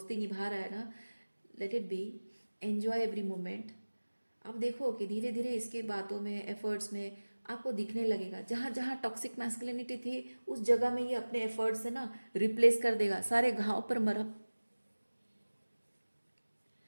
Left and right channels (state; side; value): inverted; both; correlation -1.00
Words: निभा रहा है ना, let it be, enjoy every moment. आप देखो कि धीरे धीरे इसकी बातों में, एफर्ट्स में आपको दिखने लगेगा, जहाँ जहाँ टॉक्सिक मैस्कुलिनिटी थी उस जगह में ये अपने एफर्ट्स से ना रिप्लेस कर देगा, सारे घाव पर मरहम,